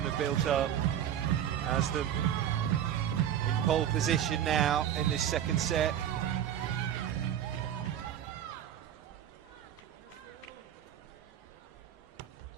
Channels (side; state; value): left; quieter; 10.2 dB